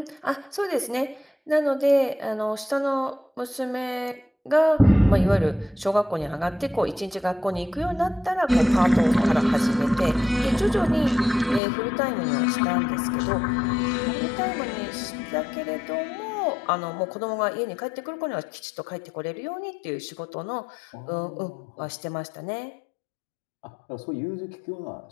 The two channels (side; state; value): right; drops out; at 11.6 s